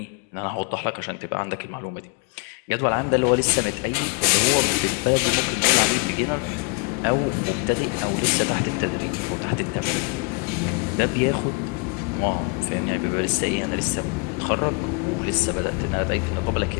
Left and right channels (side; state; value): right; quieter; 31.7 dB